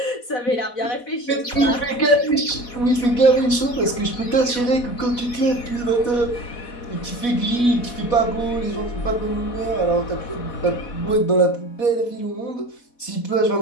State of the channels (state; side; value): late; right; 4.1 ms